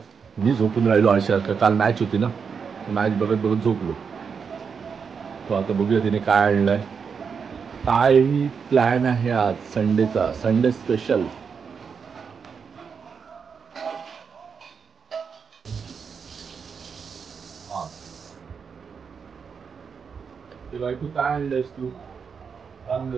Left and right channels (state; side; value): quieter; left; 6.1 dB